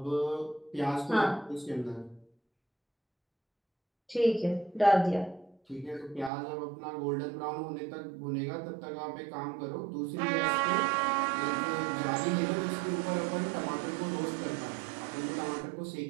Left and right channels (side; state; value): left; drops out; at 6.3 s